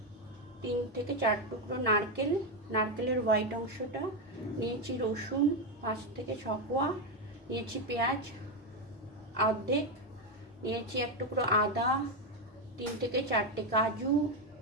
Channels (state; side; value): normal; both; correlation 0.07